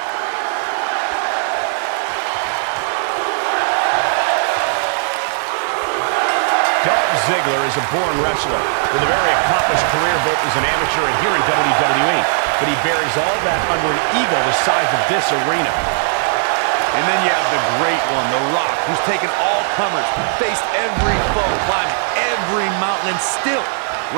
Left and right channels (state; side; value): silent; left; digital silence